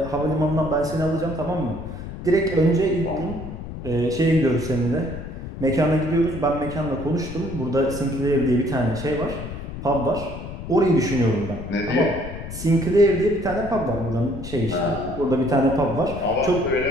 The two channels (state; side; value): noise; left; rumble, 10 dB below the sound